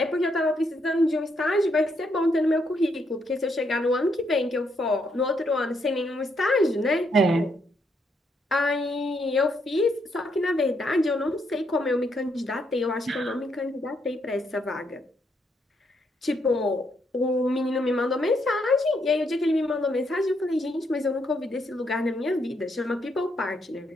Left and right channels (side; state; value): both; normal; correlation 0.76